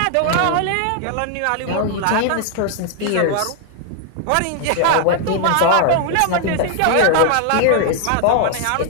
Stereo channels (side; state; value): both; different; correlation 0.00